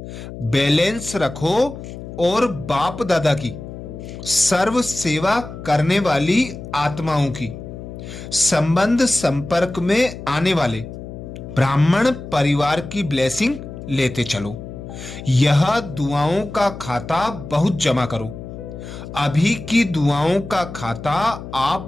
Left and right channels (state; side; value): noise; left; hum, 11 dB below the sound